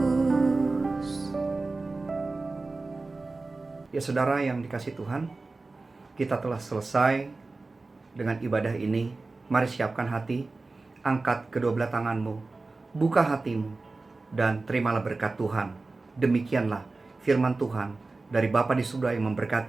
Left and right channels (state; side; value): quieter; left; 3.5 dB